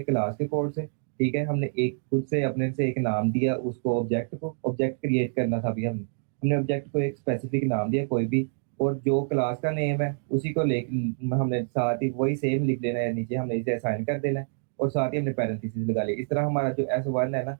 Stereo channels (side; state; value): left; silent; digital silence